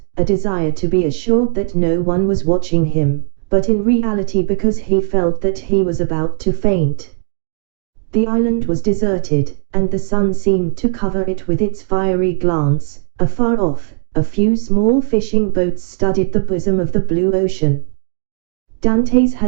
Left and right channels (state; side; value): silent; left; 66 dB below the other